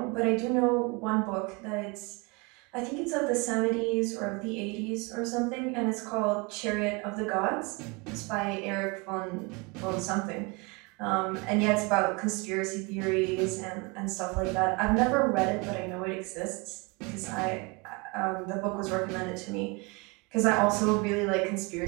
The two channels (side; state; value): left; quieter; 28.4 dB